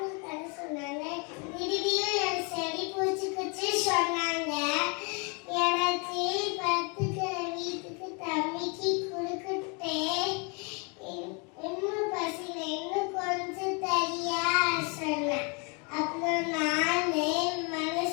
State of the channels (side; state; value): right; quieter; 33.3 dB